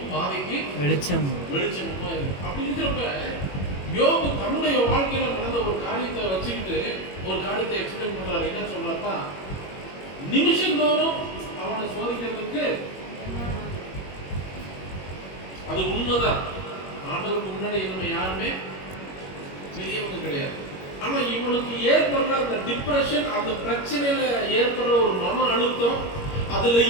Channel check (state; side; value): late; right; 21 ms